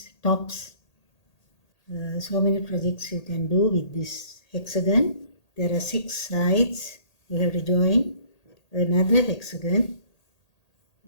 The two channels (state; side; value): late; right; 1.8 ms